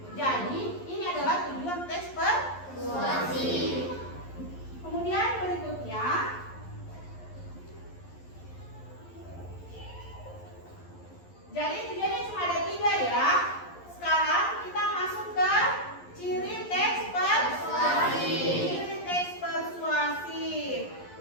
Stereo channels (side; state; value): right; late; 11 ms